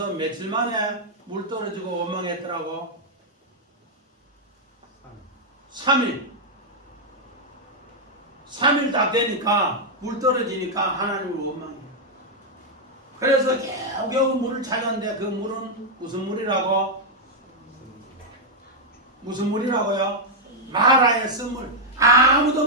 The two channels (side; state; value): both; normal; correlation -0.03